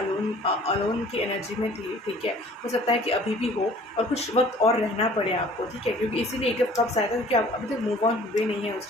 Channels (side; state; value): both; normal; correlation 0.51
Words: की एनर्जी में थी, ठीक है। हो सकता है कि अभी भी हो और कुछ वक्त और रहना पड़े आपको, ठीक है, क्योंकि इसीलिए एक कब आया था, क्योंकि आप अभी तक मूव ऑन हुए नहीं है